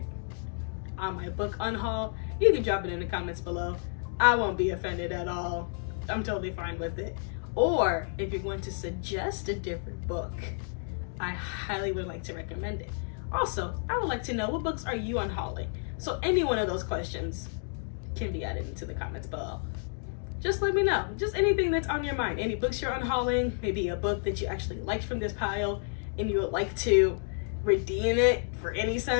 on my book Unhaul, you can drop it in the comments below. I won't be offended at all. I'm totally fine with it. Or if you're going to suggest a different book, I highly would like to recommend it. Also, I would like to know, what books are you unhauling? So any one of those questions can be added into the comments below. Just let me know. Just anything that's on your mind. Any books you're unhauling, maybe a book that you actually liked from this pile and you would like to redeem it for any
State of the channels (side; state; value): right; silent; 57 dB below the other